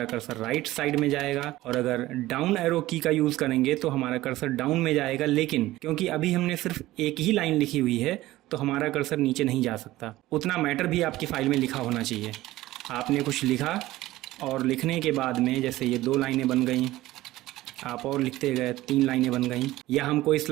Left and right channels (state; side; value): quieter; left; 16.7 dB